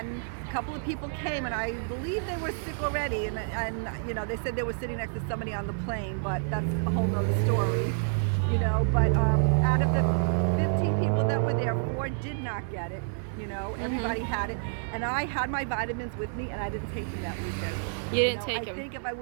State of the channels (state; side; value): silent; left; 59 dB below the other